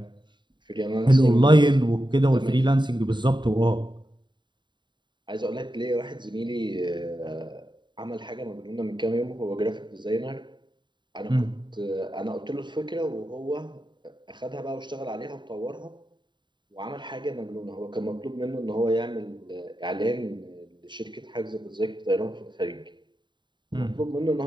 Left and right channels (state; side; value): late; left; 0.22 ms